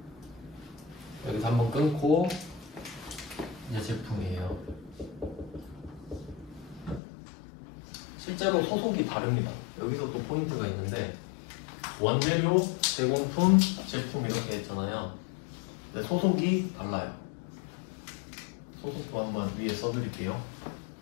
여기서 한번 끊고 이제 제품이에요. 실제로 소속이 다릅니다. 여기서 또 포인트가 있는데 원재료, 제공품, 제품 이렇게 했잖아요. 근데 소속이 달라요. 소속도 한번 위에 써드릴게요.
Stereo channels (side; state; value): right; drops out; at 7.0 s